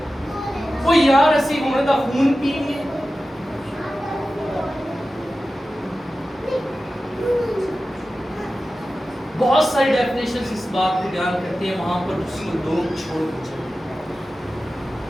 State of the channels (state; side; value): normal; both; correlation 0.94